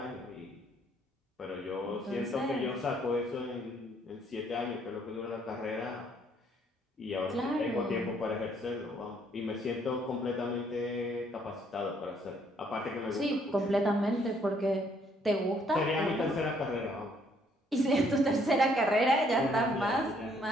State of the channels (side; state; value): both; normal; correlation 0.66